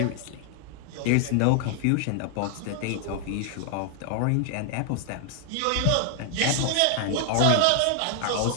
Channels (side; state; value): both; different; correlation 0.00